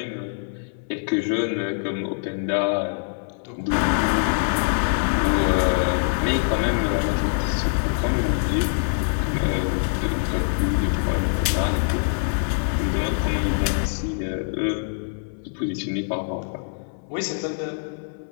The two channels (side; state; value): right; silent; 60 dB below the other